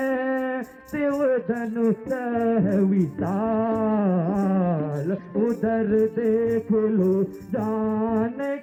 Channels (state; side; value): identical; both; correlation 1.00